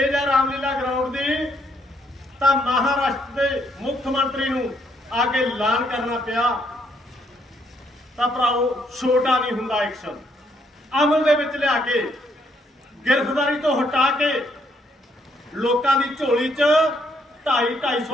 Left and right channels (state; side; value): normal; both; correlation 0.71